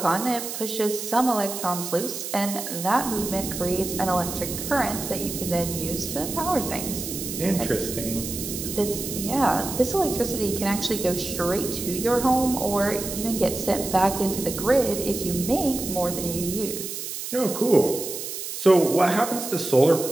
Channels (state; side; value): noise; right; hiss, 6 dB below the sound